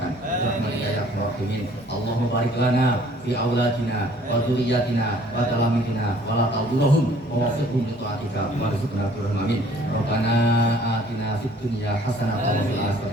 Rahmatika ya arhamar rahimin. Allahumma barik lana fi auladina wa dzurriyyatina wa talamidina wa la tadurruhum wa waffiqhum li ta'atika warzuqna turham amin. Rabbana atina fid dunya hasanatan wa fil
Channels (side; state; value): both; normal; correlation 0.56